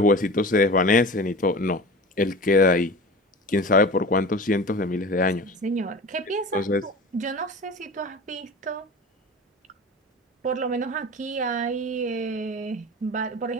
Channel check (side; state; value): both; normal; correlation 0.35